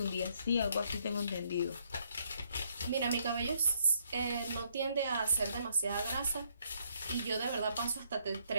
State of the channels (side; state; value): both; inverted; correlation -0.71